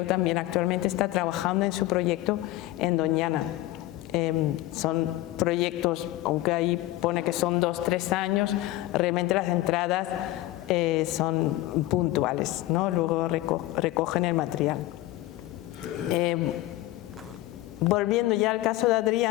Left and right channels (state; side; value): quieter; right; 16.8 dB